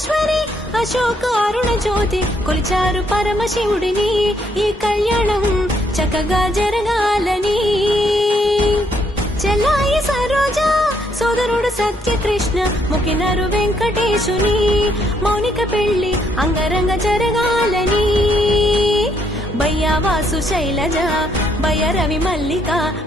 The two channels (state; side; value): normal; both; correlation 0.72